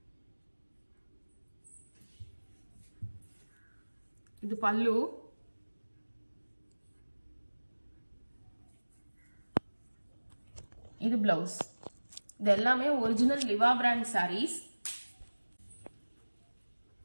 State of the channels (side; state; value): both; inverted; correlation -1.00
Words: இது பல்லு. இது பிளவுஸ். இது எல்லாமே ஒரிஜினல் லிவா பிராண்ட் சாரீஸ்.